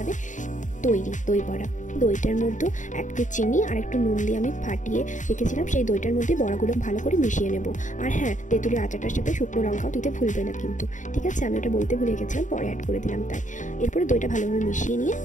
তৈরি দই বড়া। দইটার মধ্যে একটু চিনি আর একটু নুন দিয়ে আমি ফাটিয়ে রেখেছিলাম, সেই দইটার মধ্যে বড়াগুলো ভালো করে মিশিয়ে নেব। আর হ্যাঁ, তেঁতুলের আচারটার সাথে শুকনো লঙ্কাও দিতে ভুলবে না কিন্তু, ঠিক আছে? আমি ওটা বলতে ভুলে গেছিলাম, পরে অ্যাড করে দিলাম তাই। এরপরে দইটা ভালোভাবে মিশিয়ে নিয়ে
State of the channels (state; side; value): late; right; 0.36 ms